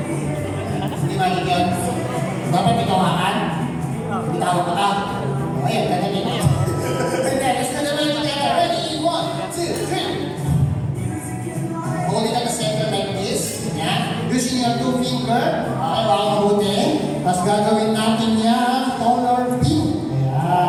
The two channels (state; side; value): identical; both; correlation 1.00